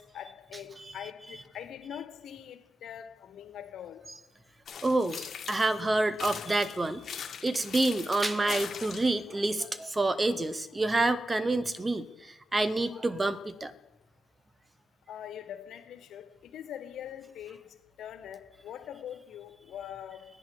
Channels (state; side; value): normal; both; correlation 0.92